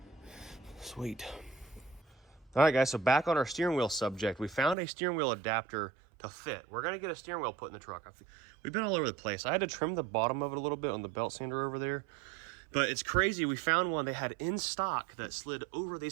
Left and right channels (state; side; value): drops out; left; at 4.8 s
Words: Sweet. All right, guys, so back on our steering wheel subject, we found a steering wheel adapter to fit. We're gonna get a steering wheel put in the truck. We've been all over the place. I had to trim the bottom of it a little bit on the belt sander over there, but it's crazy. We found one they had in stock that slid over